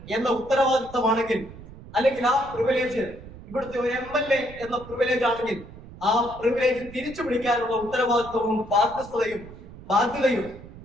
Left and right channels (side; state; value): right; noise; rumble, 17 dB below the sound